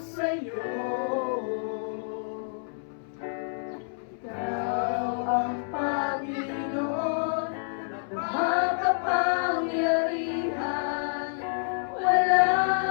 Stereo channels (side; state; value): right; silent; 59 dB below the other